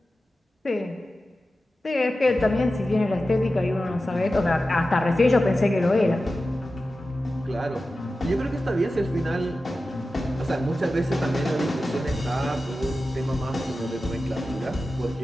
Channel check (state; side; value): normal; both; correlation 0.93